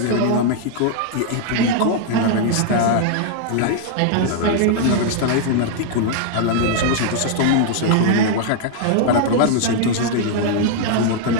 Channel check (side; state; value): both; different; correlation 0.00